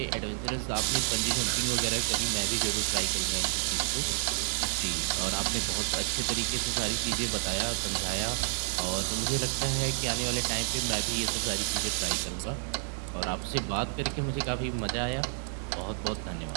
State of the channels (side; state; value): left; silent; 58 dB below the other